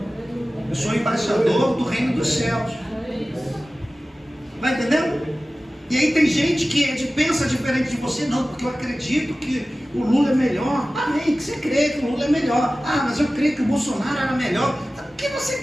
Eu sou embaixador do reino dos céus. Vai entendendo? E aí tem gente que pensa diferente de você. Não, porque eu acredito que o Lula é melhor. Amém, que você crê que o Lula é melhor. Ah, mas eu creio que o Bolsonaro era melhor. Por que você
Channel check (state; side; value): normal; both; correlation 0.96